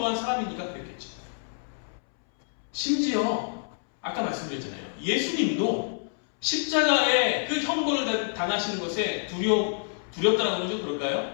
사람이니까 그랬겠죠. 심지어 아까 말씀드렸잖아요. 예수님도 십자가의 그 형벌을 당하시는 것에 두렵다라고 하죠.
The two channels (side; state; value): right; silent; 60 dB below the other